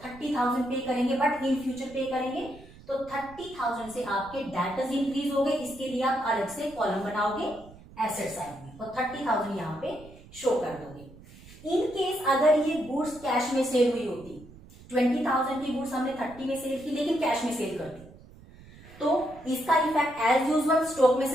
पे करेंगे, बट इन फ्यूचर पे करेंगे, तो 30,000 से आपके डेटर्स इंक्रीज हो गए। इसके लिए आप अलग से कॉलम बनाओगे एसेट साइड में, और 30,000 यहाँ पे शो कर दोगे। इन केस अगर ये गुड्स कैश में सेल हुई होती, 20,000 की गुड्स हमने 30 में सेल की लेकिन कैश में सेल कर दी, तो इसका इफेक्ट एज यूजुअल स्टॉक में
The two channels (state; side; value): noise; right; rumble, 20 dB below the sound